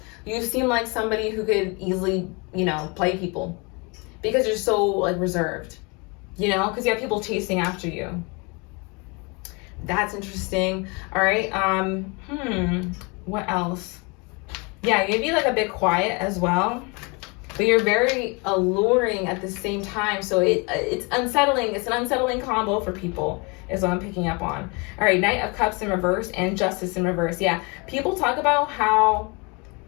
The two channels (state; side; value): quieter; right; 29.8 dB